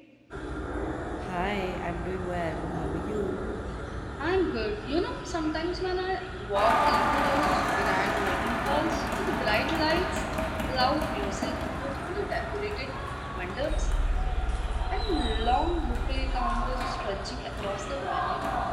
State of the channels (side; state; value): both; identical; correlation 1.00